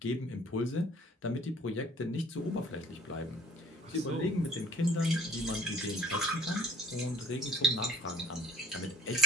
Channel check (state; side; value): normal; both; correlation 0.50